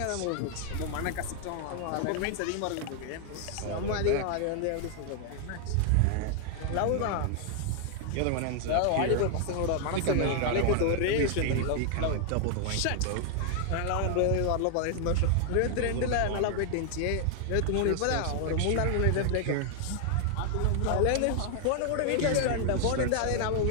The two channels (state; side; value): different; both; correlation 0.00